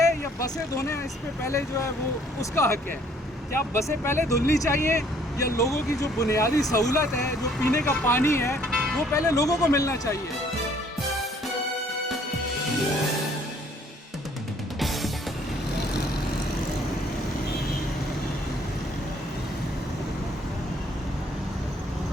या बसें धोने इस पे पहले जो है वो उसका हक है? क्या बसें पहले धुलनी चाहिए या लोगों की जो बुनियादी सहूलत है, जो पीने का पानी है, वो पहले लोगों को मिलना चाहिए?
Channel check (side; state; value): both; normal; correlation 0.61